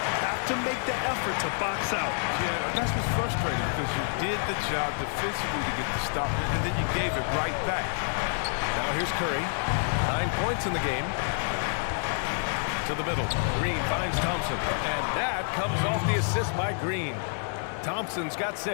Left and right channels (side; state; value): right; silent; 59 dB below the other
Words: Have to make the effort to box out. Yeah, that's what's frustrating because you did the job defensively to get the stop, and then you gave it right back. Now here's Curry. 9 points in the game. To the middle. Green finds Thompson. And that comes off the assist by Green. Thompson's got